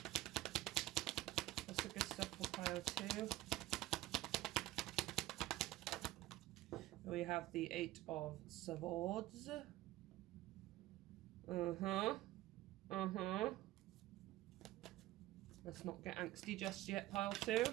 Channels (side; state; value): left; quieter; 16.3 dB